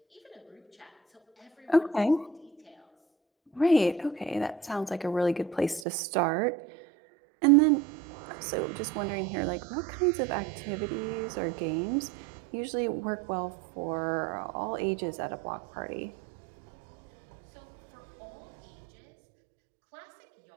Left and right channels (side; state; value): left; drops out; at 5.9 s